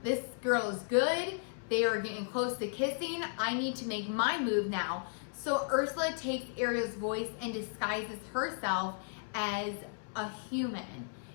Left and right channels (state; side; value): silent; right; 55 dB below the other